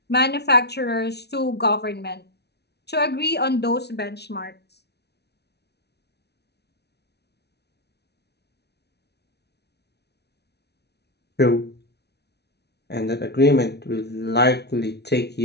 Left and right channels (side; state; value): right; late; 0.49 ms